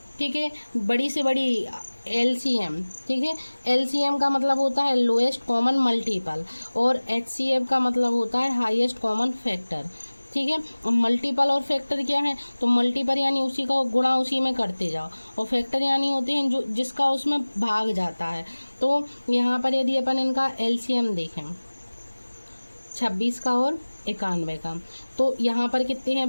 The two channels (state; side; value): inverted; both; correlation -1.00